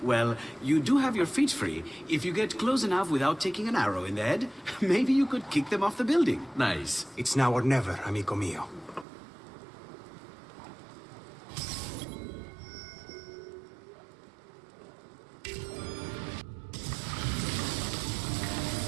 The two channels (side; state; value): left; drops out; at 9.1 s